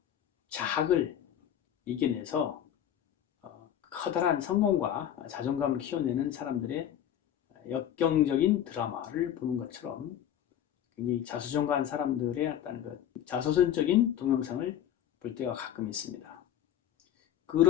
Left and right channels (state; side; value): quieter; right; 10.6 dB